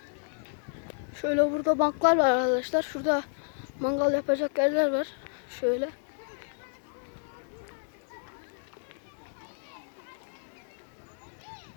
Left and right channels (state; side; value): silent; right; digital silence